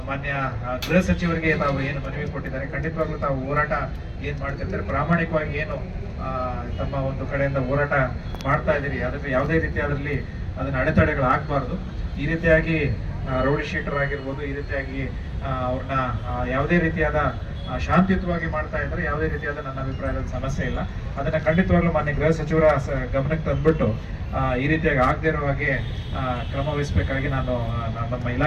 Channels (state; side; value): identical; both; correlation 1.00